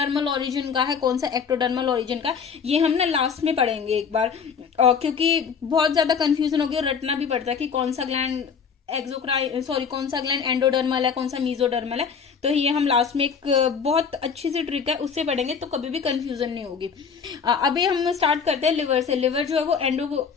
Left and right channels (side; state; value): right; quieter; 6.3 dB